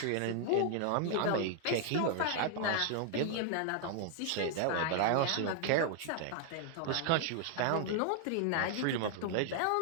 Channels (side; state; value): both; different; correlation 0.00